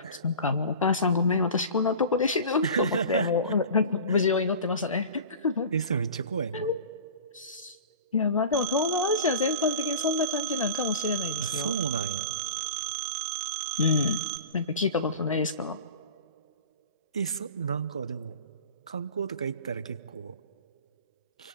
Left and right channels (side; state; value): both; inverted; correlation -0.36